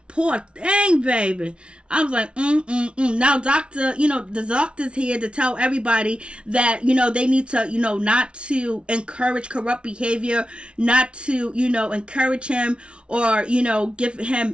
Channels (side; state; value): left; late; 0.058 ms